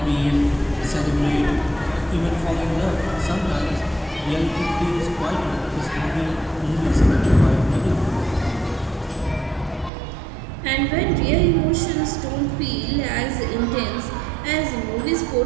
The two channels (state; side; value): drops out; left; at 9.9 s